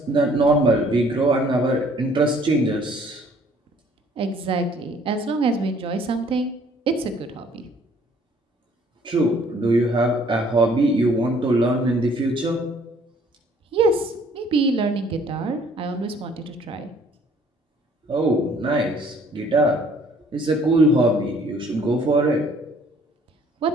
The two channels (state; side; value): normal; both; correlation 0.59